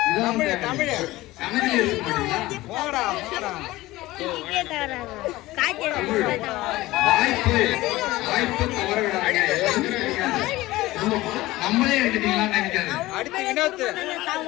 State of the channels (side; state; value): right; quieter; 18.2 dB